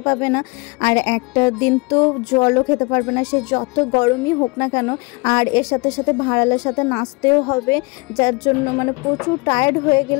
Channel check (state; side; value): quieter; right; 28.2 dB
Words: পাবে না, আর একটা দিন তো জলও খেতে পারবে না, সে যত গরমই হোক না কেন। আর এর সাথে সাথে ভাড়ালের সাথে নাচতেও হবে, যার জন্য মানে প্রচুর টায়ার্ড হয়ে